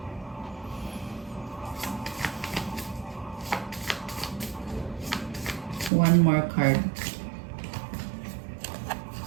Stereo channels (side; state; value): left; drops out; at 5.9 s